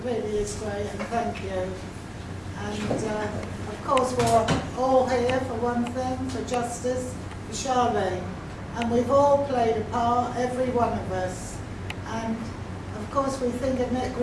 really is great, and thank you. And of course, we're all here for one thing, for justice, for Charlene. And we've all played a part, every one of us. And of course, we think of Nick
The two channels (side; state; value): both; identical; correlation 1.00